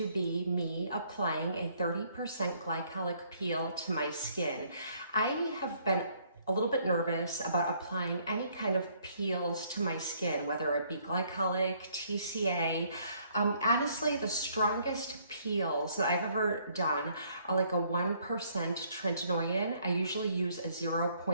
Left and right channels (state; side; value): inverted; both; correlation -0.65